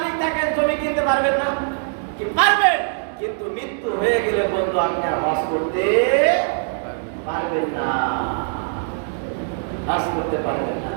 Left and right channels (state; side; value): silent; left; 64 dB below the other